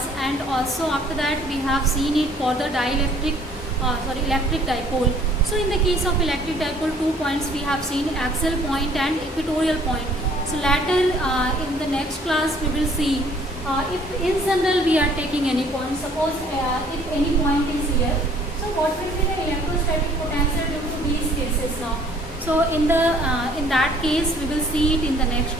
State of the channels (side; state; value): both; normal; correlation 0.58